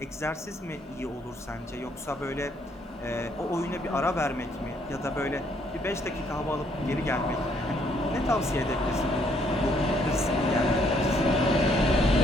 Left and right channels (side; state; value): both; normal; correlation 0.68